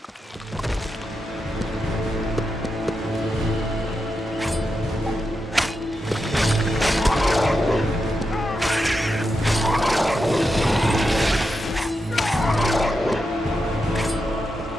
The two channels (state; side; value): normal; both; correlation 0.87